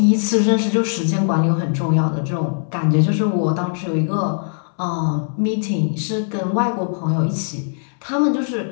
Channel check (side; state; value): right; silent; 66 dB below the other